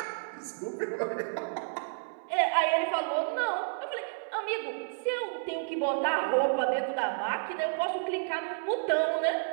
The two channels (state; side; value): silent; left; 57 dB below the other